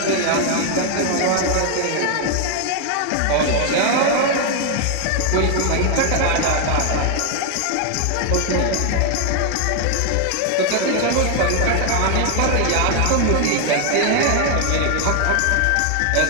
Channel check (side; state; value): both; different; correlation 0.00